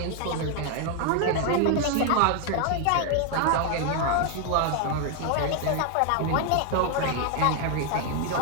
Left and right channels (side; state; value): both; different; correlation 0.01